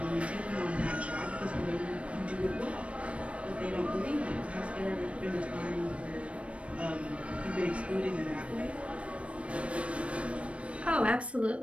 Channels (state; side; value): late; left; 0.062 ms